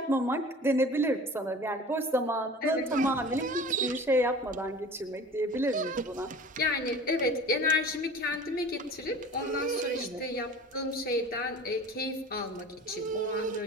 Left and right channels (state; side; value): normal; both; correlation 0.40